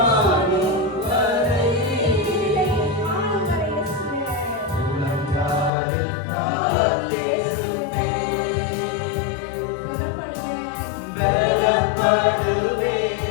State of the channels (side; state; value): right; drops out; at 5.7 s